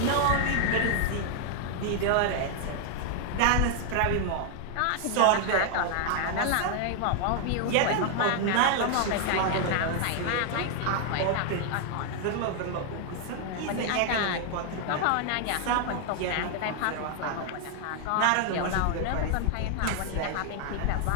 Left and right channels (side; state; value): both; different; correlation 0.00